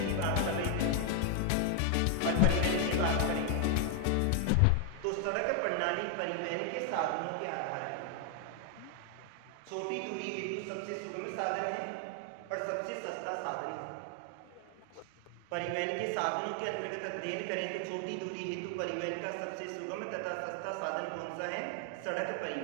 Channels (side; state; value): both; different; correlation 0.00